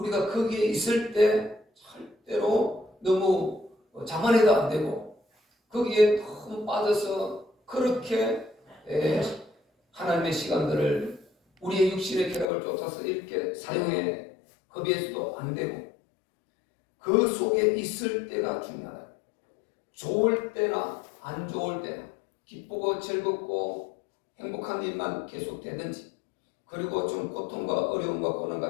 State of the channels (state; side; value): drops out; right; at 12.5 s